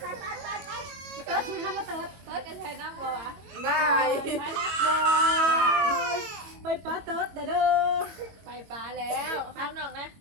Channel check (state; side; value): late; left; 22 ms